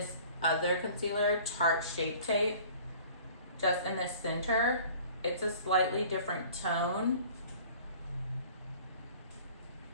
other concealer, Tarte Shape Tape, just in the center. It's a slightly different tone,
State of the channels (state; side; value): inverted; both; correlation -0.48